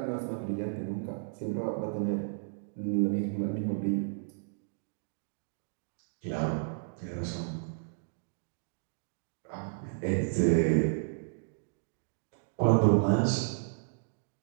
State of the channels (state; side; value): silent; left; digital silence